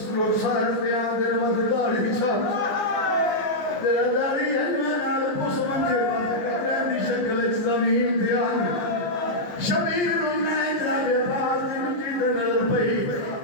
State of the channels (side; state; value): right; late; 14 ms